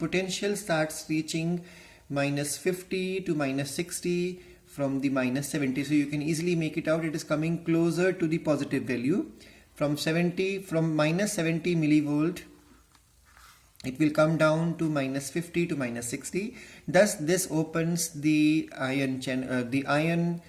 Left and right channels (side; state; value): both; identical; correlation 1.00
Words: starts reaching -50 to -60 from the -70. So you can easily make it out. It is coming closer to the positive value. From -70 millivolt, it will come down to -50 to -60. Thus this opens the ion channels,